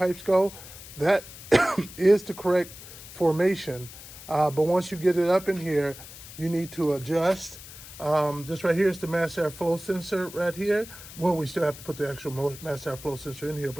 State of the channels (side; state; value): left; noise; hiss, 15 dB below the sound